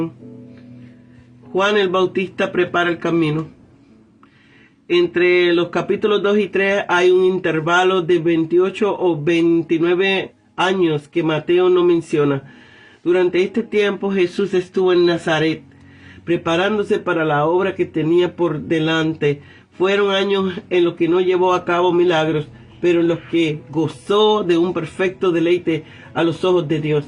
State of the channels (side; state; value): both; identical; correlation 1.00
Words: Juan el Bautista prepara el camino. Entre los capítulos 2 y 3 hay un intervalo de 28 o 29 años que Mateo no menciona. Durante este tiempo Jesús estuvo en Nazaret, preparándose para la obra que tenía por delante. Fueron años en los que no llevó a cabo milagros, pero en los que gozó de un perfecto deleite a los ojos de Dios.